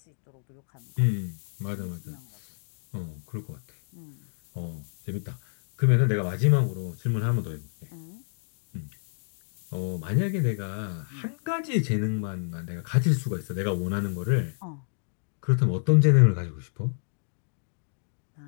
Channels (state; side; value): silent; right; digital silence